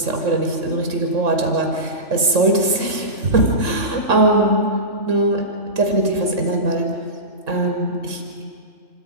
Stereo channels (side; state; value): left; late; 3.6 ms